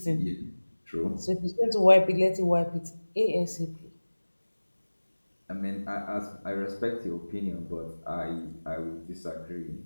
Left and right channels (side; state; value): both; inverted; correlation -1.00